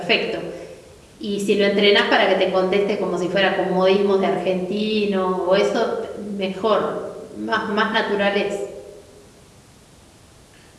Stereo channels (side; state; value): both; identical; correlation 1.00